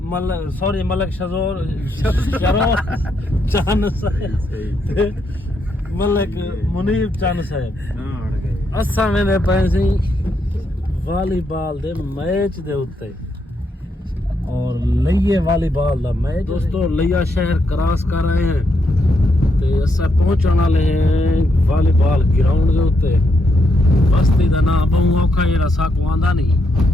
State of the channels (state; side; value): normal; both; correlation 0.79